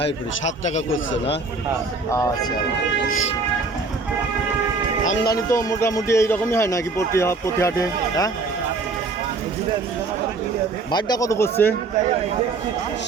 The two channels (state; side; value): quieter; left; 3.8 dB